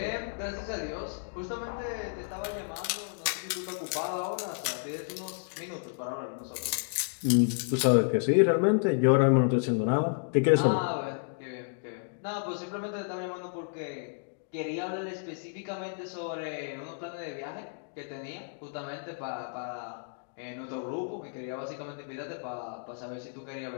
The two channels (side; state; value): right; silent; digital silence